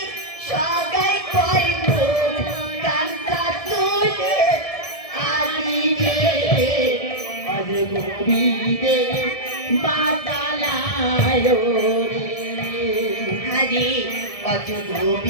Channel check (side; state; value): right; late; 1.7 ms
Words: সাগাই কইব কান্তা তুলে আলি রে আজ গোবিন্দে বাতালায় রে হরি অজ